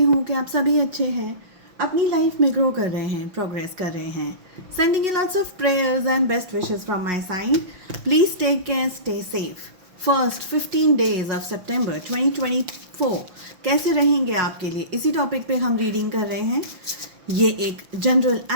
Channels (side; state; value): left; late; 5.9 ms